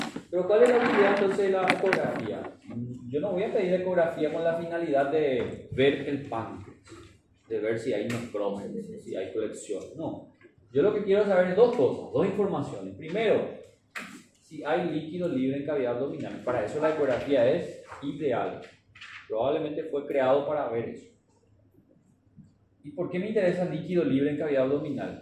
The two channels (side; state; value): both; identical; correlation 1.00